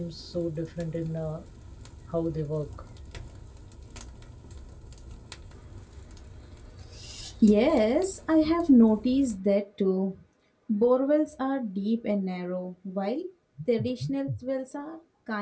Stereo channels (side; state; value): both; identical; correlation 1.00